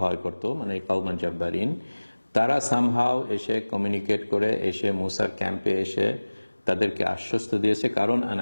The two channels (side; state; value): both; inverted; correlation -1.00